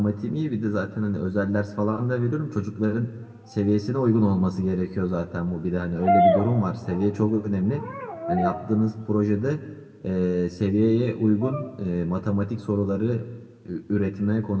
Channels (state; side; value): identical; both; correlation 1.00